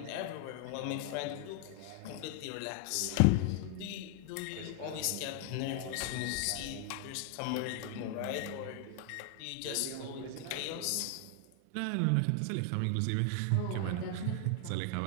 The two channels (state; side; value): different; both; correlation 0.00